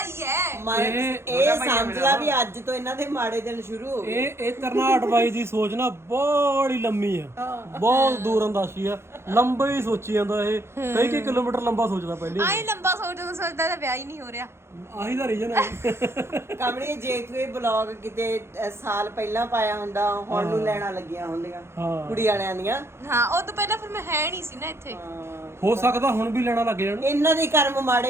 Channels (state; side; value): late; left; 0.12 ms